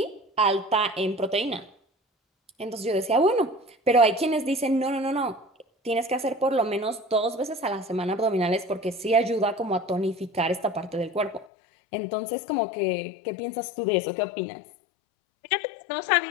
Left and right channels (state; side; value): drops out; right; at 11.5 s